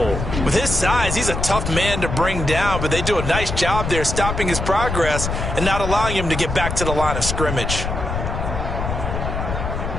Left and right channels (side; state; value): left; noise; rumble, 3 dB below the sound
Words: With his size, he's a tough man to bring down, but they do a nice job there stopping his progress and not allowing him to get back to the line of scrimmage.